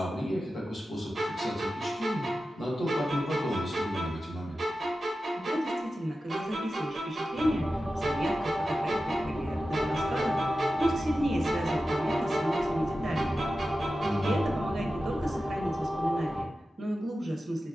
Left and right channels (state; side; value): normal; both; correlation 0.93